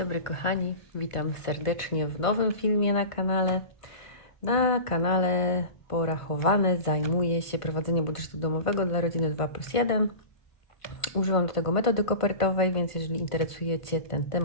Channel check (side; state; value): right; late; 1.5 ms